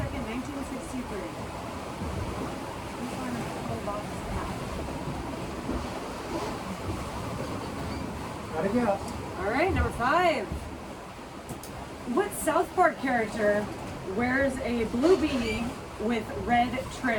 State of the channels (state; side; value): identical; both; correlation 1.00